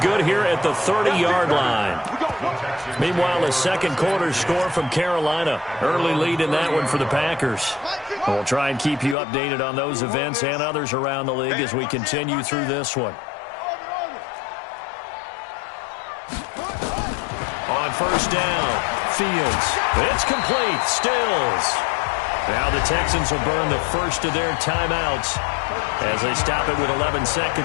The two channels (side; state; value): right; drops out; at 9.2 s